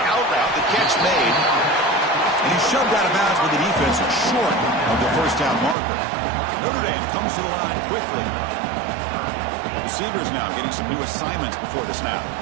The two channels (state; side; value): drops out; left; at 5.8 s